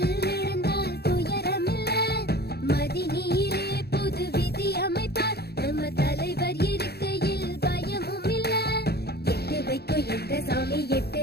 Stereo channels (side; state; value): right; late; 0.47 ms